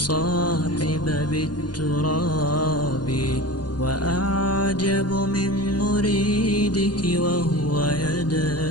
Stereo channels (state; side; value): late; right; 0.69 ms